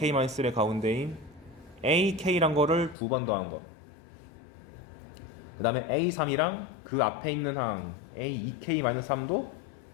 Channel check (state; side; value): drops out; right; at 3.0 s